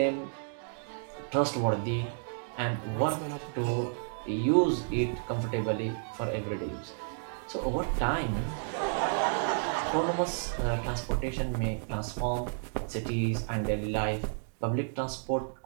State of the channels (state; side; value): silent; left; digital silence